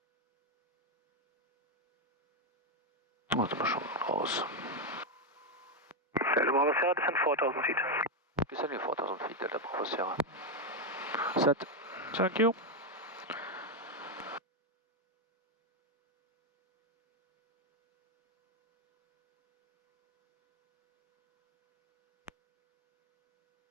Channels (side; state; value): both; normal; correlation 0.05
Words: Warte mal schon raus. Delta Bravo Sierra, descend 4000 feet. Descending 4000 feet, Delta Bravo Sierra. Set. Thank you.